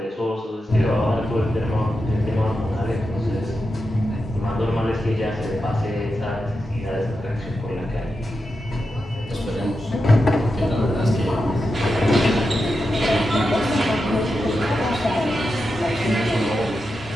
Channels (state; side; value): normal; both; correlation 0.89